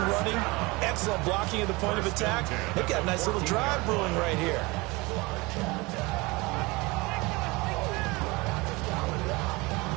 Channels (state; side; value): quieter; left; 24.2 dB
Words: running, excellent blocking at the point of attack. They've got a nice little drive brewing right here.